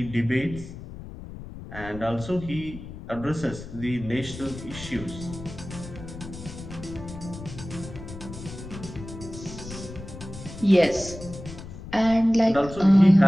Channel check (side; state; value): left; noise; rumble, 12 dB below the sound